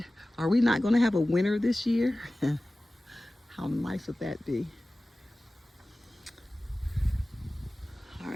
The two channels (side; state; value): both; normal; correlation 0.97